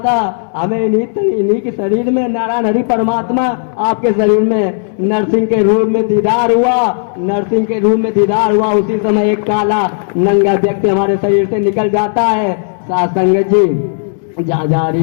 हमें इन्हीं के शरीर में नारायण हरि परमात्मा, आपके शरीर में नरसिंह के रूप में दीदार हुआ। नरसिंह के रूप में दीदार हुआ। उसी समय एक काला नंगा व्यक्ति हमारे शरीर से निकल जाता है। साथ संगत जी, जहाँ जहाँ हरि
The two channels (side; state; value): right; silent; digital silence